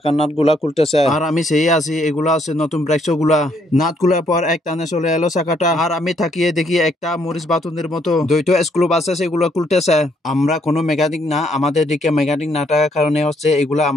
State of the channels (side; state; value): both; normal; correlation 0.70